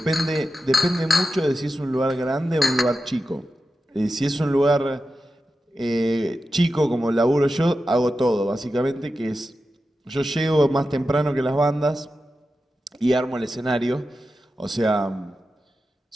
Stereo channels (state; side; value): normal; both; correlation 0.91